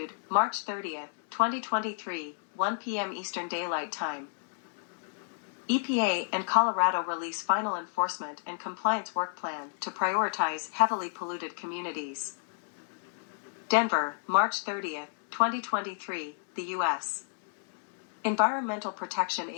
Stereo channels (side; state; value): right; silent; digital silence